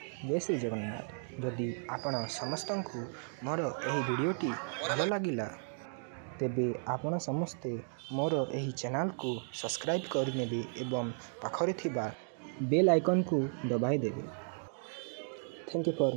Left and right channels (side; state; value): left; silent; 55 dB below the other